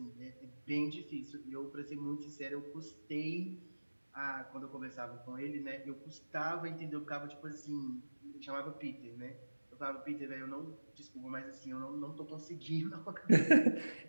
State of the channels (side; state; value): both; inverted; correlation -1.00